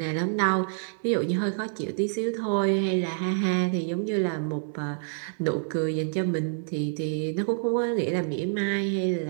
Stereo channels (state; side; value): silent; left; digital silence